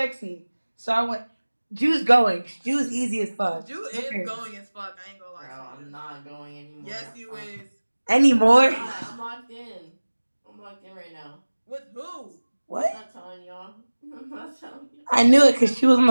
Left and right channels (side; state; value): both; inverted; correlation -1.00